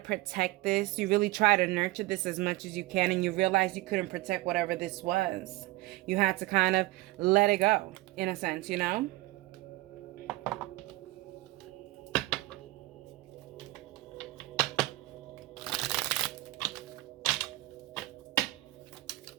this. You really try to nurture this as much as you can, and you realize you couldn't protect whatever this was. You had to kind of let it go, in a sense, you know?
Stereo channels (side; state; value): left; quieter; 18.9 dB